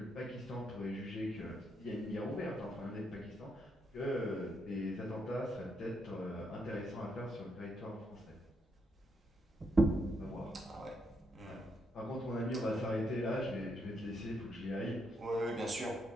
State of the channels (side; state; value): both; normal; correlation 0.78